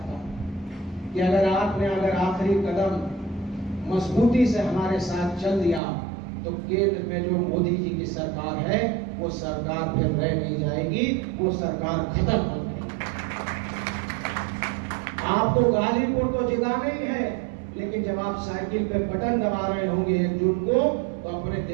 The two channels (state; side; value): drops out; left; at 5.8 s